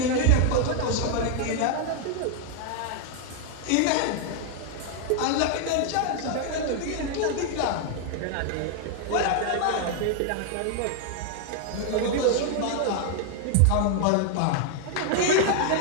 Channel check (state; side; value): different; both; correlation 0.00